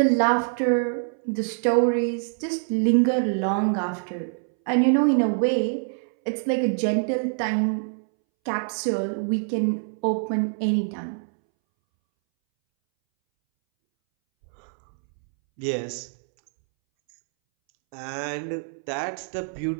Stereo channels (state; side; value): silent; left; 62 dB below the other